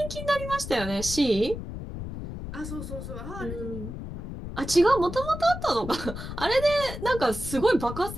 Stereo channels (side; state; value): left; noise; rumble, 8 dB below the sound